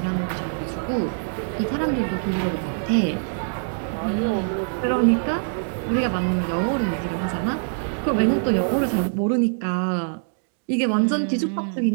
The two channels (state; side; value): silent; left; digital silence